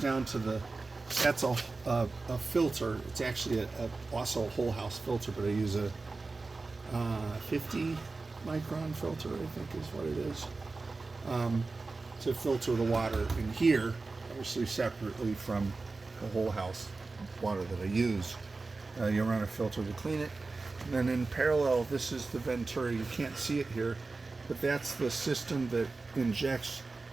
to that's a filter. It's actually also a whole house filter, but I use a 50 micron filter, I think is what it is, to filter the water in here, obviously separately from the whole house water that I use. You run a filter to clean it, and then in parallel, this is the Venturi. You can't see it here, but that's the system that injects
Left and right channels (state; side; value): quieter; left; 3.7 dB